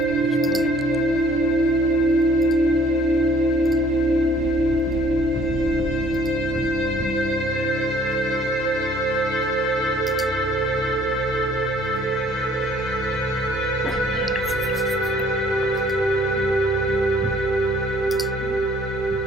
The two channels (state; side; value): normal; both; correlation 0.58